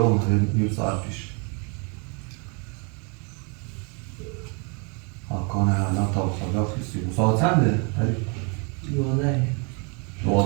اومده نیم ساعت پیش حکانه الان تا خدا خیستی ساعت چنده؟ علی؟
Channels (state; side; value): quieter; left; 34.8 dB